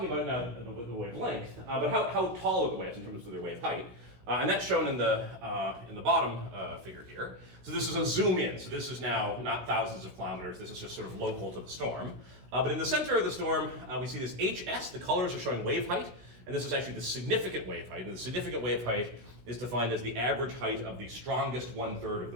about now the wavelength, but how tall are the waves in terms of their wave height? And that's shown in the bottom figure here. So this is a zoom in. So this is now not thousands of kilometers. This is just sort of local to the storm. But in the center of the storm, we see this HS. The colors are showing wave height. And this is actually the significant wave height. And the significant wave height is defined as the average height of the strongest 1/3 of the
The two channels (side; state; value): left; late; 16 ms